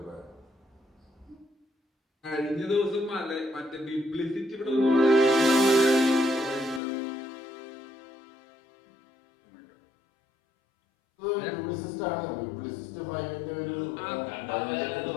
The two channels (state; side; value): drops out; right; at 6.8 s